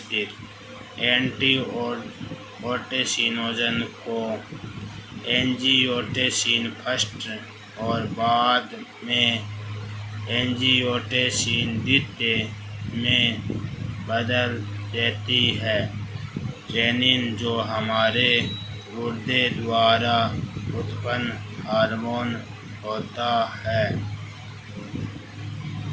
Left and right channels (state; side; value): identical; both; correlation 1.00